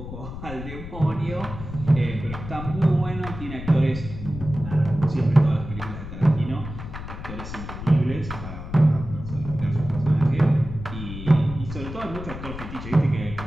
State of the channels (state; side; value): noise; left; rumble, 10 dB below the sound